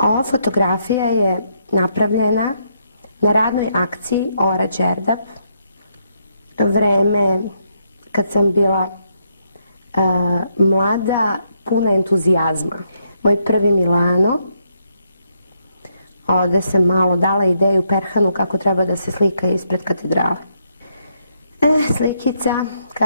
fotografija je napravljena na radnoj akciji Ora Đerdap, vreme kad sam bila mlada, puna entuzijazma. Moj prvi Milano, ovde sam malo dala ideju Perhanu kako treba da se slika ispred katedrale. Slikica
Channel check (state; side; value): inverted; both; correlation -0.77